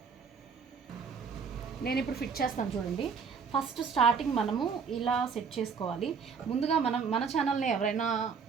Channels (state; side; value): quieter; left; 5.9 dB